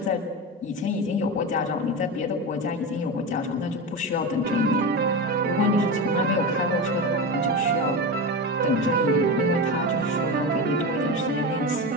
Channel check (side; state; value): both; normal; correlation 0.21